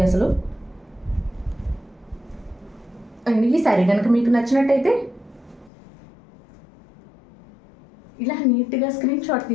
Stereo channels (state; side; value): drops out; right; at 5.7 s